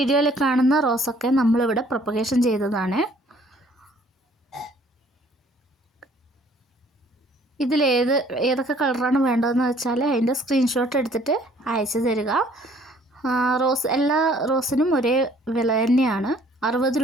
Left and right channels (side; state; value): both; normal; correlation 0.59